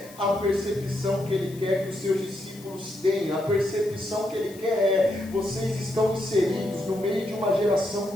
a percepção que ele quer que os seus discípulos tenham. A percepção que ele quer é: vocês estão inseridos no meio de uma geração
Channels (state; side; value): noise; left; hiss, 21 dB below the sound